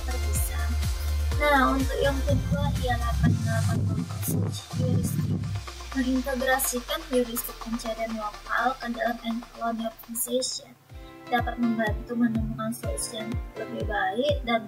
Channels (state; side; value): identical; both; correlation 1.00